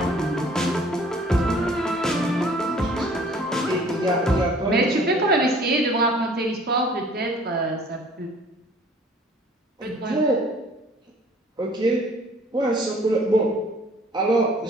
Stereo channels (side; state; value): both; normal; correlation 0.54